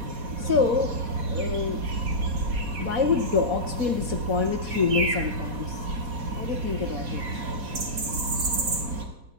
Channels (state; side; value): late; left; 4.1 ms